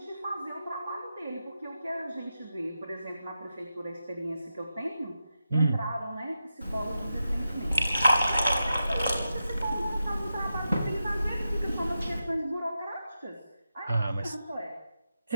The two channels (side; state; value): both; inverted; correlation -0.89